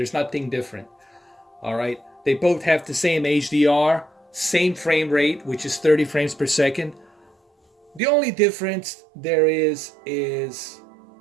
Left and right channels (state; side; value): drops out; left; at 8.0 s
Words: nothing different. All right. They both have the same HDR, same frame rate, which is 30 frames per second. The only difference there is